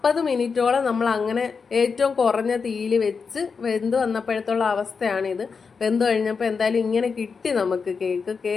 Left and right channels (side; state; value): right; quieter; 5.3 dB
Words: മിനിറ്റോളം നമ്മൾ അങ്ങനെ ഏറ്റവും കുറഞ്ഞ തീയിൽ വെച്ച് വെന്ത് വന്നപ്പോഴത്തുള്ള അവസ്ഥയാണിത്. വെന്ത് കഴിഞ്ഞപ്പോൾ എന്തായാലും ഇങ്ങനെ കിട്ടി നമുക്ക്